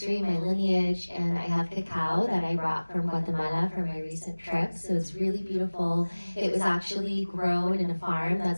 my lineage, and I have cacao that I brought from Guatemala for my recent trip, so it's really beautiful. It was actually grown in a farm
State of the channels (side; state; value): both; inverted; correlation -1.00